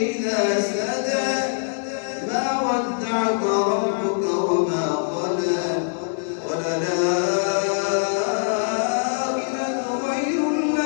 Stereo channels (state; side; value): silent; right; digital silence